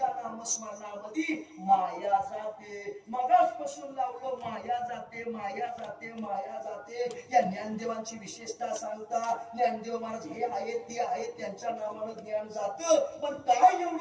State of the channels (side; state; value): both; identical; correlation 1.00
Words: नामस्मरणामध्ये माया जाते मगासपासून लावलं माया जाते माया जाते माया जाते या ज्ञानदेवांची विशेषता सांगता ज्ञानदेव महाराज हे आहेत ते आहेत त्यांच्या नावानं ज्ञान जातं पण काय